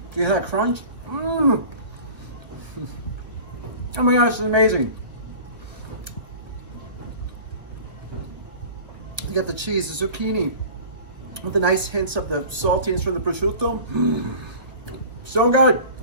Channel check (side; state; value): left; late; 1.1 ms